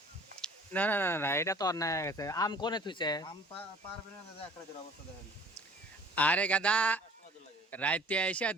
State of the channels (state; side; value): normal; both; correlation 0.50